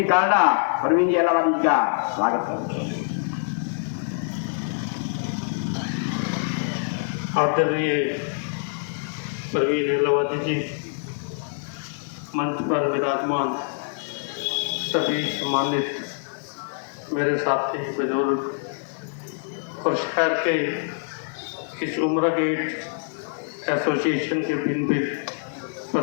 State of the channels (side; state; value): right; silent; digital silence